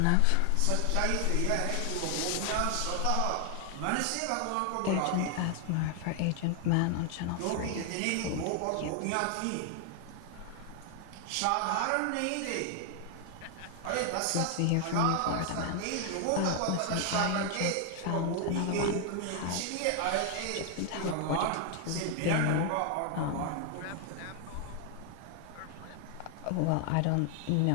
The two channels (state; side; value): different; both; correlation 0.00